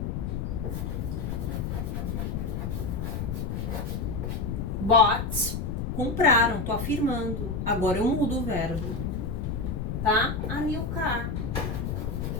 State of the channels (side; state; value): left; noise; rumble, 2 dB below the sound